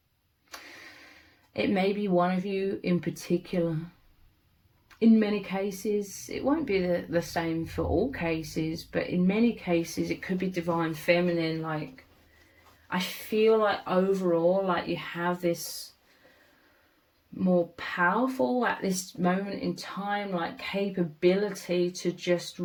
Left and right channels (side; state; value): both; identical; correlation 1.00